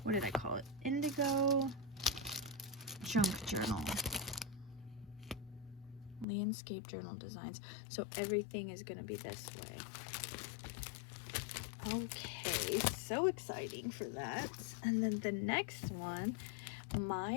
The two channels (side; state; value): right; drops out; at 6.2 s